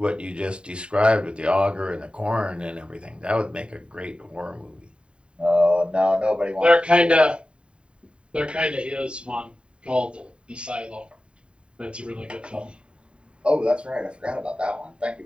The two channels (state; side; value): late; left; 0.054 ms